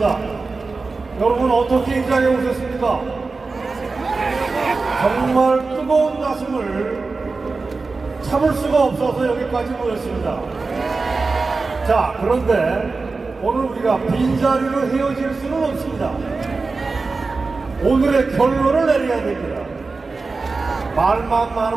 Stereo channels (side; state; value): left; quieter; 4.0 dB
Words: 여러분 어떻게 이 자리에 오셨습니까? 정말 뜨거운 가슴을 참을 수가 없어서 여기까지 모였습니다. 자, 그런데 오늘 우리가 빈자리로 헤어질 수는 없습니다. 오늘의 결론을 내려야 됩니다. 말만